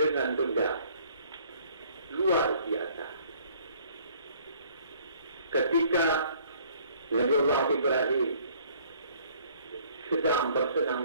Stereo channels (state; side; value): inverted; both; correlation -0.58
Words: benda luar biasa. Ketika Nabi Allah Ibrahim sedang